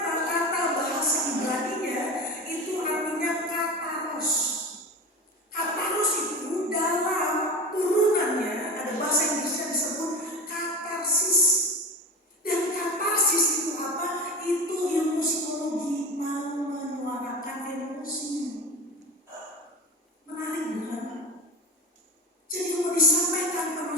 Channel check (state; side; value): normal; both; correlation 0.29